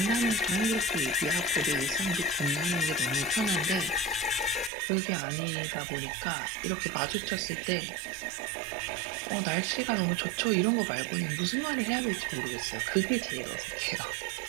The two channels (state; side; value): drops out; left; at 4.7 s